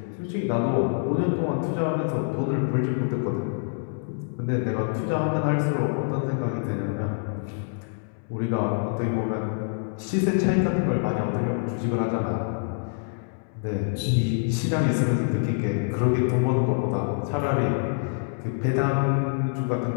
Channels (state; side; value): silent; right; digital silence